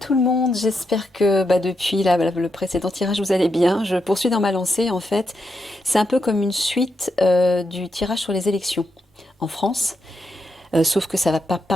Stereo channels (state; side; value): normal; both; correlation 0.83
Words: le monde, j'espère que depuis le précédent tirage vous allez bien. Je poursuis dans ma lancée en fait. C'est un peu comme une suite du tirage sur les élections en France, sauf que ça va pas